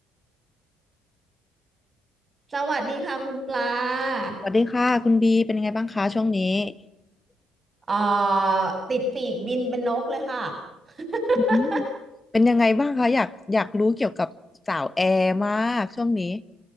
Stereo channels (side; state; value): both; normal; correlation 0.90